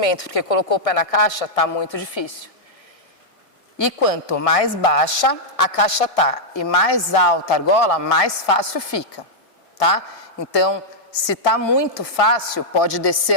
porque colocou o pé na caixa, está muito difícil. E quanto mais baixa a caixa está e mais alta a argola, mais fácil fica, tá? Então, se está muito fácil, pode descer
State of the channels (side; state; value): right; late; 1.7 ms